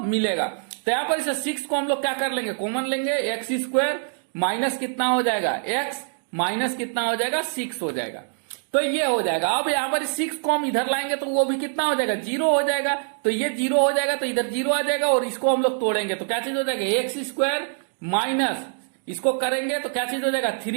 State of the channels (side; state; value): left; silent; digital silence